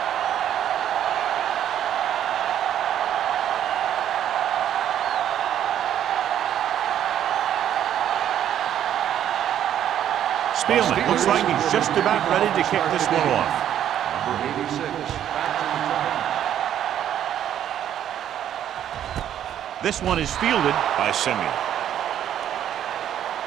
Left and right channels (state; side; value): quieter; left; 10.5 dB